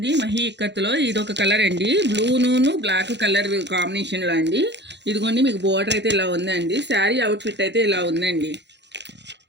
మహీ ఇక్కత్తులో ఇదొక కలర్ అండి, బ్లూను బ్లాక్ కలర్ కాంబినేషన్లో అండి. ఇదిగోండి, మీకు బోర్డర్ అయితే ఇలా ఉందండి. శారీ అవుట్ఫిట్ అయితే ఇలా ఉందండి.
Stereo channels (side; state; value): left; late; 0.51 ms